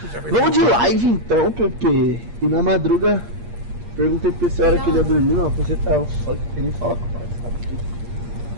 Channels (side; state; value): left; late; 8.5 ms